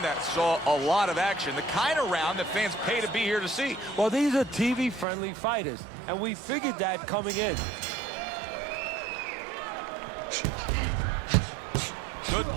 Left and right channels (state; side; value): drops out; left; at 5.1 s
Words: that saw a lot of action, the kind of round that fans pay to be here to see. Well, these are TV-friendly fighters, and we figured that coming in. Good